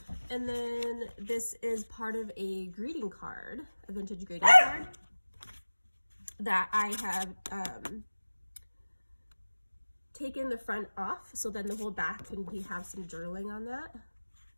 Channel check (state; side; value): inverted; both; correlation -1.00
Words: And then this is part of a greeting card, a vintage greeting card that I have taken the front off, so then the whole back can have some journaling on that.